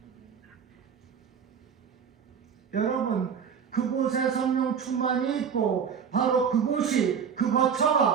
여러분, 그곳에 성령 충만이 있고 바로 그곳이, 그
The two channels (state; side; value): quieter; left; 7.1 dB